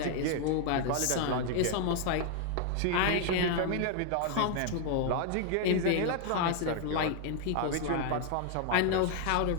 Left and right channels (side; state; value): both; different; correlation 0.00